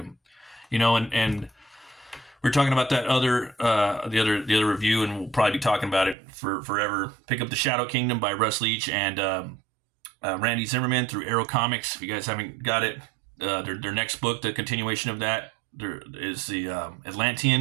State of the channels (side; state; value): left; drops out; at 6.2 s